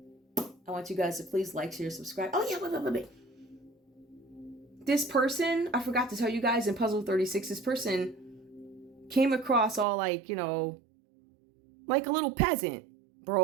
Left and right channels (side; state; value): left; drops out; at 9.9 s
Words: I want you guys to please like, share, subscribe. Oh yeah, wait. This person, I forgot to tell you guys in Puzzle 36, this person came across all like, you know, like a little peasant,